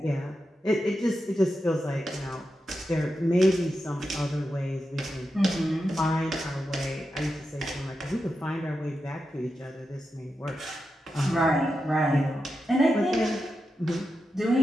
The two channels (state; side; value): normal; both; correlation 0.89